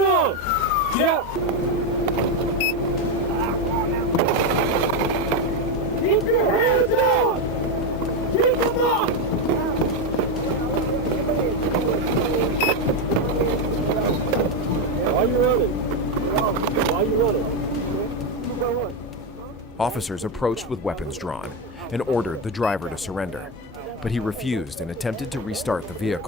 on? Yeah. Keep your hands up! Keep them up! Why are you running? Why are you running? Officers approached with weapons drawn and ordered the driver to surrender, but he refused and attempted to restart the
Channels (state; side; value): normal; both; correlation 0.09